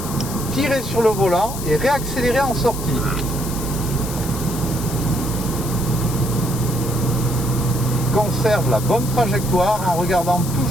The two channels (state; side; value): noise; left; hiss, 10 dB below the sound